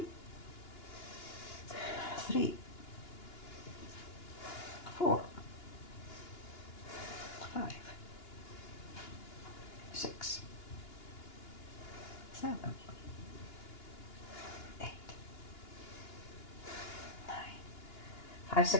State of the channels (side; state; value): right; late; 2.9 ms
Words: 3, 4, 5, 6, 7, 8, 9. 5